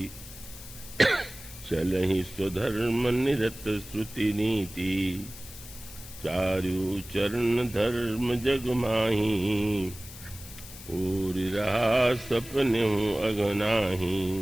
चलहि स्वधर्म निरत श्रुति नीति। चारु चरण धर्म जग माही, पूरी रहा सपनेहु अगनाही।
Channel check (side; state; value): left; noise; hiss, 15 dB below the sound